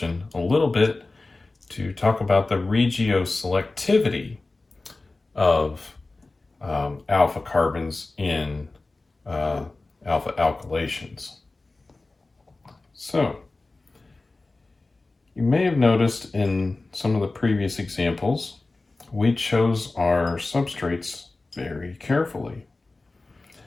a little bit to talk about the regioselectivity of alpha carbons in alpha alkylations. So, you may have noticed in some of the previous examples, we chose our substrates very carefully.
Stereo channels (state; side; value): quieter; right; 3.3 dB